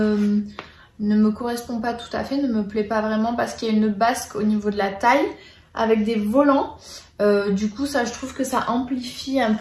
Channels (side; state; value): both; identical; correlation 1.00